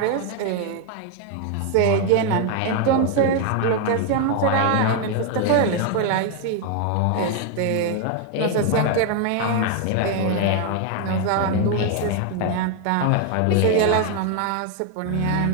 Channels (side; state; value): both; different; correlation 0.01